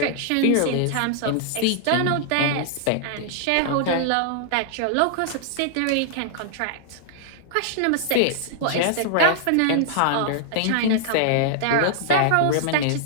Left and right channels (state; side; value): different; both; correlation -0.01